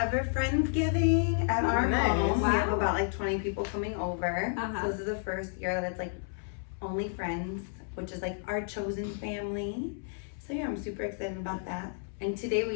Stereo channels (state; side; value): silent; right; 57 dB below the other